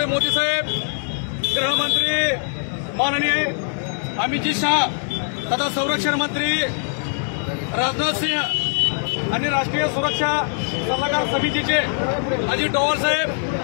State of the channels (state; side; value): silent; right; 56 dB below the other